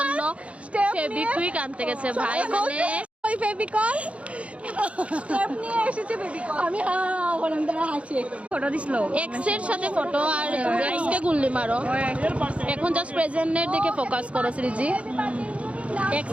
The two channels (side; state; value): left; late; 0.063 ms